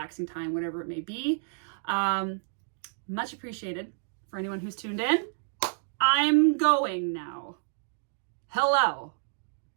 time, whatever it may be. Much appreciated for anyone who's tuned in. I'm going now. Hello.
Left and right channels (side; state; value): left; silent; digital silence